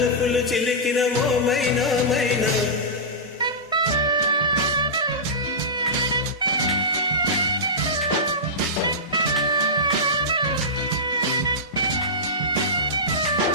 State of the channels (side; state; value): both; normal; correlation -0.15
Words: చిలికిన ఓ మైనా మైనా.